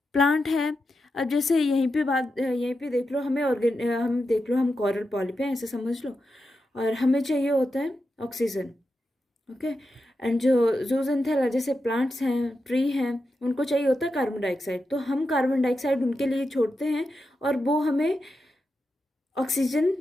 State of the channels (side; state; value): both; normal; correlation 0.88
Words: प्लांट है, अब जैसे यहीं पे देख लो, हम देख लो हम कोरल पॉलिप हैं ऐसे समझ लो, और हमें चाहिए होता है ऑक्सीजन, ओके। एंड जो जूजेंथेला जैसे प्लांट्स हैं, ट्री हैं, उनको चाहिए होता है कार्बन डाइऑक्साइड। तो हम कार्बन डाइऑक्साइड उनके लिए छोड़ते हैं और वो हमें ऑक्सीजन